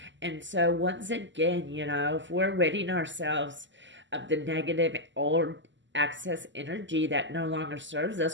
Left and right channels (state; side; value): late; left; 0.54 ms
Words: And so once again, if we're ridding ourselves of the negative old excess energy that no longer serves